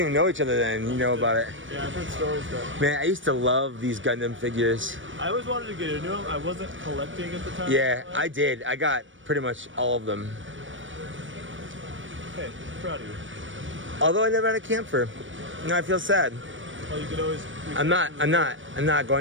even know each other then. You know about it. Yeah, I've heard stories though. Man, I used to love these Gundam figures. I always wanted to get into them. I wasn't collecting at the time. Yeah, I did. I got pretty much all of them. Hey, proud of you. Although I never had a camper. No, I feel sad. Well, you could always. I'm not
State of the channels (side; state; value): left; late; 0.56 ms